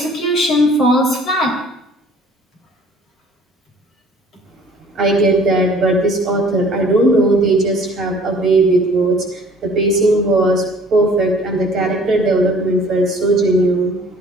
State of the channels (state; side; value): normal; both; correlation 0.53